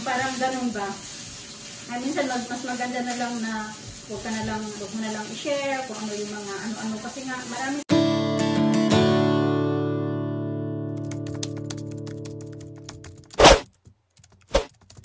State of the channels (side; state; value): both; identical; correlation 1.00